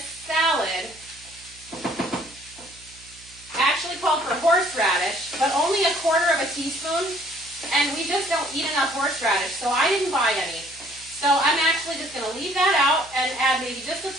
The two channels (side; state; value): right; noise; hum, 24 dB below the sound